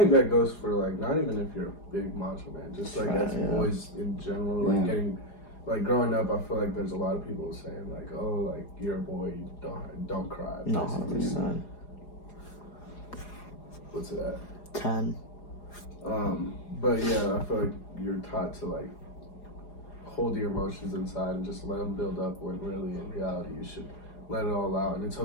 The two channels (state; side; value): late; right; 4.9 ms